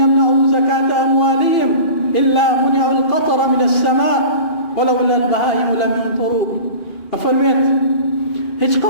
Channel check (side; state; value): right; late; 2.5 ms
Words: زكاة أموالهم إلا منعوا القطر من السماء ولولا البهائم لم ينطروا. أفرميت هیچ